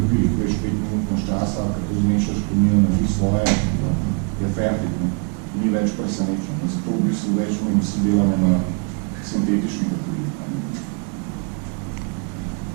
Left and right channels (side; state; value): left; quieter; 36.3 dB